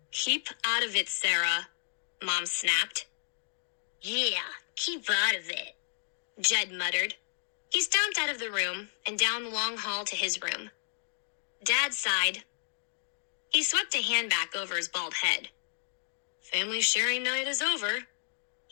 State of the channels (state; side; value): silent; right; digital silence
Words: "Keep out of it, Sarah," Mom snapped. "Yeah, keep out of it," Jed muttered. He stomped out of the room and down the long hall to his room. Dad sighed. He swept a hand back over his bald head. Family sharing night is over,